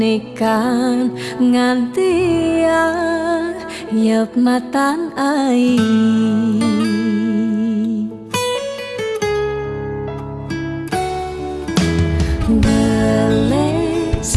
ngantia yep matan ai. Beles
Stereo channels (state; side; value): identical; both; correlation 1.00